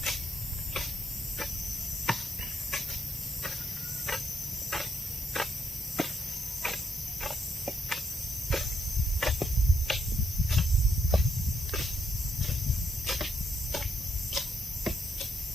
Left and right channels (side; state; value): both; normal; correlation 0.75